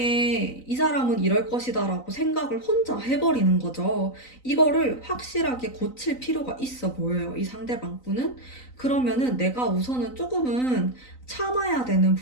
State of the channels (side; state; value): right; late; 3.9 ms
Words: 이 사람은 이럴 것이다라고 생각을 혼자 해버리는 거죠. 이거를 확실하게 고칠 필요가 있어 보여요. 이 상대방 분은. 그러면은 내가 우선은 조금은 참아야 되는